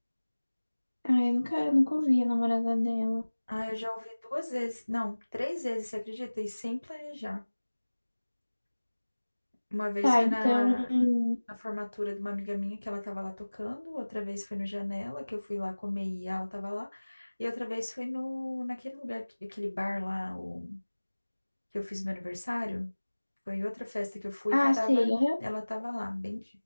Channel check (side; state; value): both; inverted; correlation -1.00